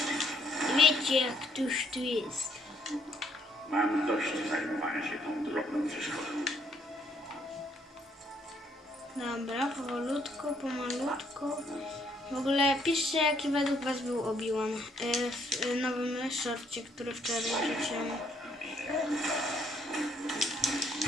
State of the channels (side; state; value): both; normal; correlation 0.68